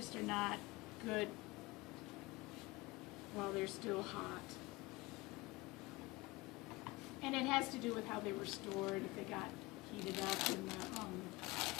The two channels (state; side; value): quieter; right; 22.2 dB